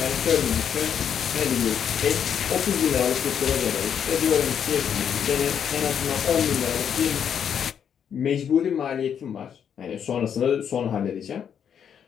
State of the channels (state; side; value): quieter; right; 8.2 dB